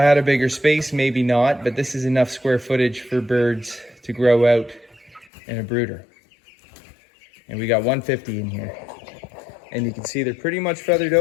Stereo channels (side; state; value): right; drops out; at 5.3 s